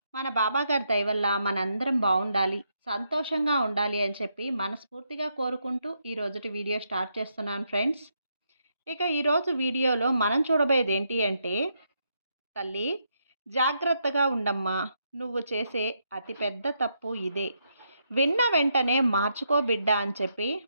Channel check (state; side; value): inverted; both; correlation -0.79